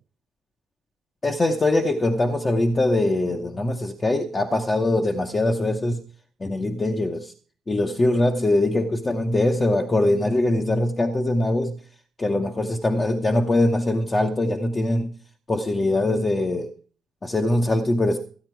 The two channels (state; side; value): normal; both; correlation 0.91